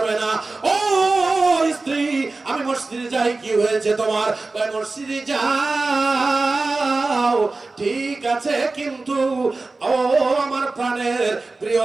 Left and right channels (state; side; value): quieter; left; 3.5 dB